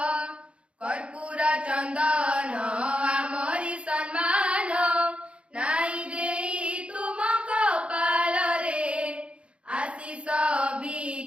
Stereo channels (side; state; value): left; late; 0.059 ms